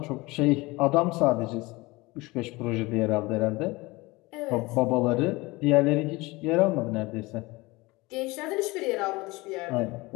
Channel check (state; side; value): quieter; right; 22.5 dB